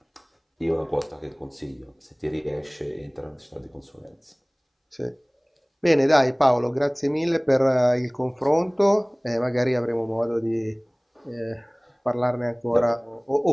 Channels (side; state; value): both; identical; correlation 1.00